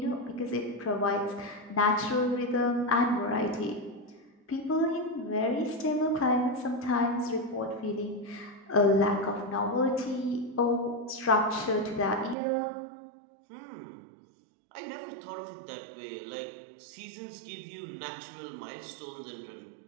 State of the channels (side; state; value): left; drops out; at 12.4 s